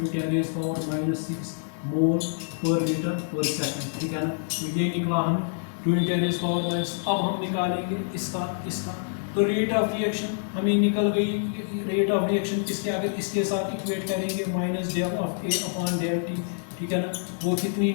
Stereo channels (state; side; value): silent; right; 60 dB below the other